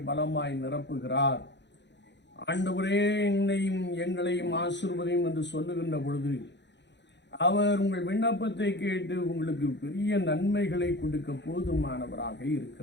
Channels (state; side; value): late; right; 0.52 ms